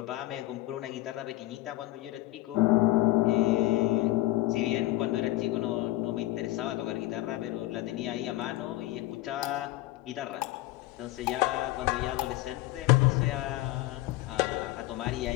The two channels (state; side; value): quieter; right; 17.6 dB